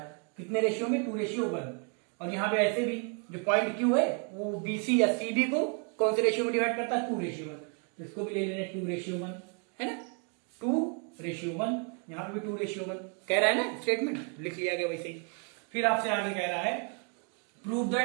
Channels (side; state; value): left; quieter; 37.0 dB